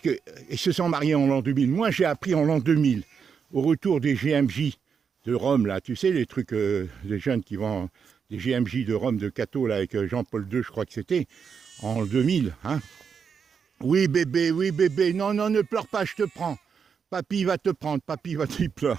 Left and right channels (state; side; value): quieter; left; 6.5 dB